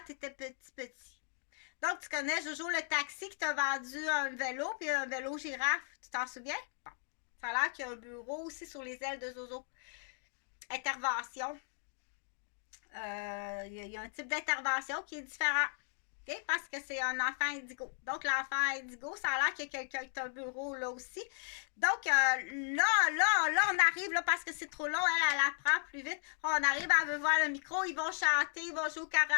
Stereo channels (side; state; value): right; silent; 54 dB below the other